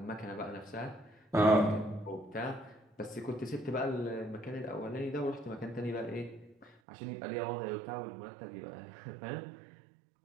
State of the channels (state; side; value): drops out; left; at 6.8 s